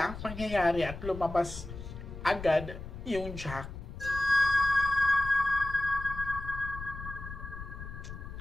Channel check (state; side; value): noise; left; rumble, 10 dB below the sound